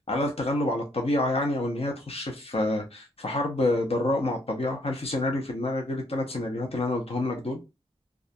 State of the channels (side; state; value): both; normal; correlation 0.68